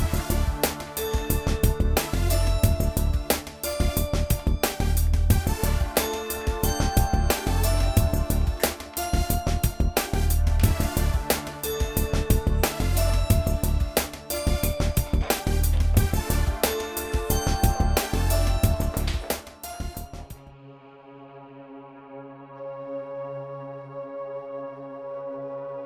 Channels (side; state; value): both; identical; correlation 1.00